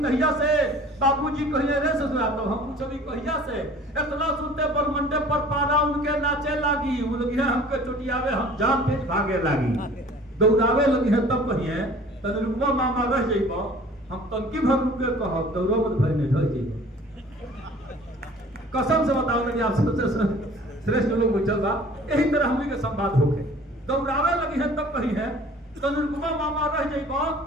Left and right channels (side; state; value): both; normal; correlation 0.48